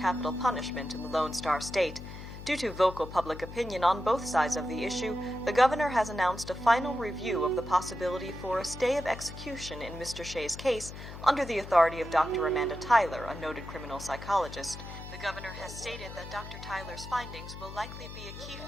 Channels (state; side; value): noise; left; hum, 12 dB below the sound